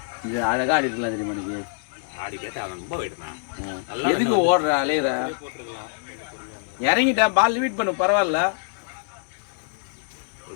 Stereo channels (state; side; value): silent; right; digital silence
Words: இது அழகா அடிக்கலாம் தெரியுமா நீங்க? ஆடி கேட்டா ரொம்ப வைடுனா. எதுக்கு ஓடுற அலையற? இறங்கிட்டா பால் லிமிட் பண்ணு பரவாயில்ல. ஒரு